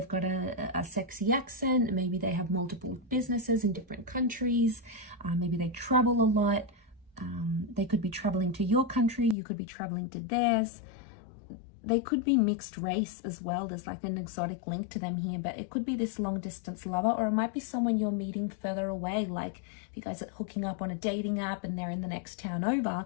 got a sexy accent. Maybe they have multiple businesses in different countries. Maybe they travel a lot. They could be traveling to your country. You could be traveling to theirs. They could be mixed race as well. There's like an exotic link to them here, but it could be this long distance lover, or it might be someone you're meeting further away. Like if you guys are hooking up on a dating app and they're in the next town over,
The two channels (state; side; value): drops out; right; at 9.3 s